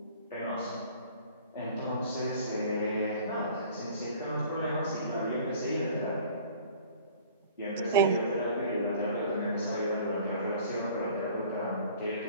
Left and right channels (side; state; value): both; inverted; correlation -0.49